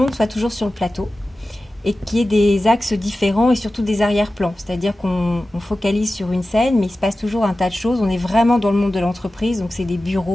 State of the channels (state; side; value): normal; both; correlation 0.95